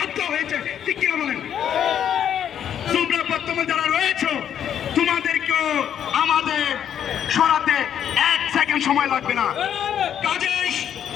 হয়েছে, ঠিক কিনা বলেন? তোমরা বর্তমানে যারা রয়েছো, তোমাদেরকেও আমাদের সরাতে 1 সেকেন্ড সময় লাগবে না। কাজেই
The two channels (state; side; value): quieter; right; 9.4 dB